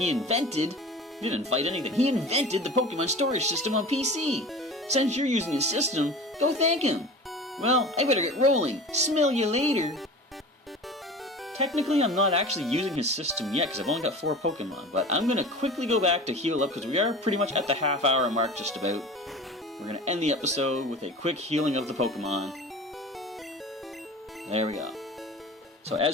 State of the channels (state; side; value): normal; both; correlation 0.37